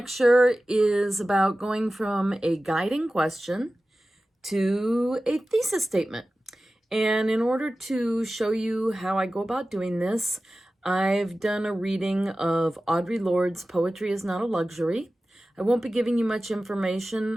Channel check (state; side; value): normal; both; correlation 0.95